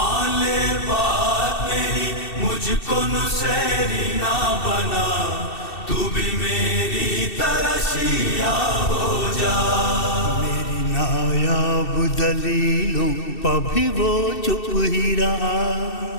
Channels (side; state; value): right; late; 2.7 ms